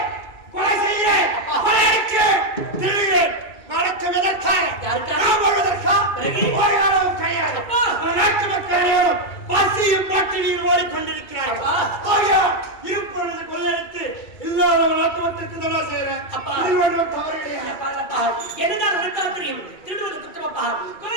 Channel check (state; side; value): late; right; 2.3 ms